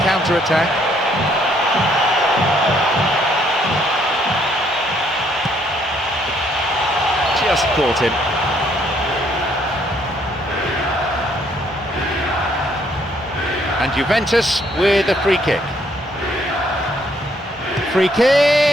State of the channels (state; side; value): normal; both; correlation 0.68